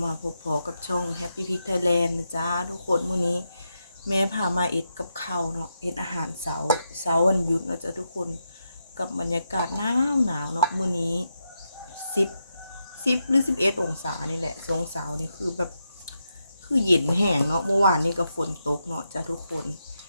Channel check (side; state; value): both; inverted; correlation -0.85